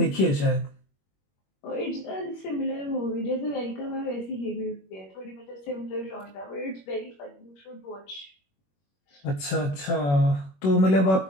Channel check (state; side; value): late; right; 21 ms